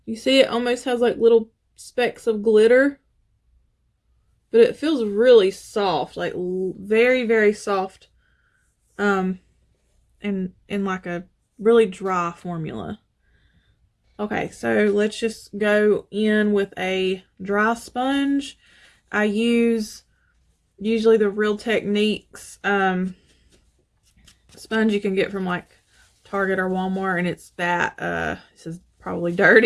You see it almost has like little specks of glitter. But it feels really soft. Like very, very soft. And like a really dry formula. Okay, so let's just go in with a dry sponge. I use usually the Real Techniques sponge you can get from like Target or Walmart, and it's that this is probably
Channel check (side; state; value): both; identical; correlation 1.00